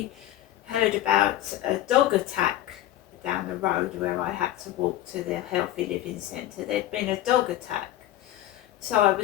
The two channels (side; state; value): right; quieter; 13.8 dB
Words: heard about a dog attack down the road where I had to walk to the Healthy Living Centre. There'd been a dog attack. So I